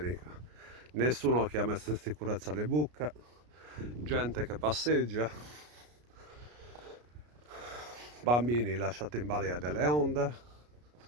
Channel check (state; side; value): late; left; 33 ms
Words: Nessuno che ha messo in sicurezza le buche, gente che passeggia, bambini lasciati in balia delle onde